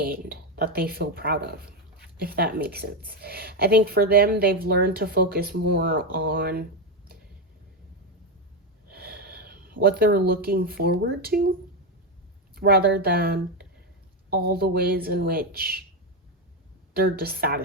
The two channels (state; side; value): normal; both; correlation 0.09